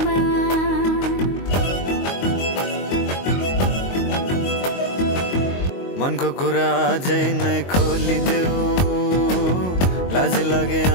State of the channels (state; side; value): late; right; 22 ms